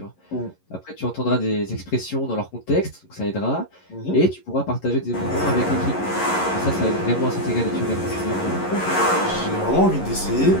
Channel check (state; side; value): late; right; 11 ms